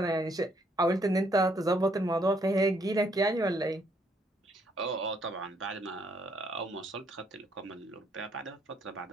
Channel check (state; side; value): normal; both; correlation 0.70